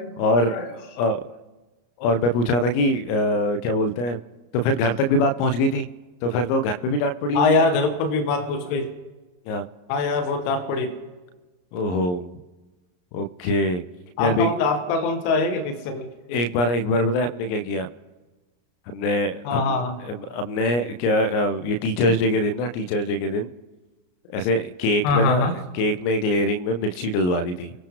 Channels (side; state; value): right; late; 33 ms